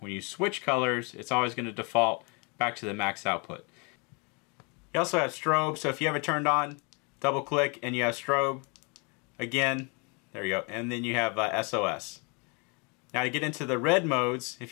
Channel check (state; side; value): quieter; right; 32.6 dB